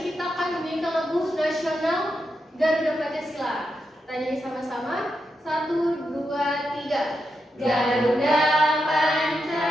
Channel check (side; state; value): both; normal; correlation 0.86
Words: kita akan menyanyikan lagu nasional Garuda Pancasila. Kita nyanyi sama-sama. 1, 2, 3. Garuda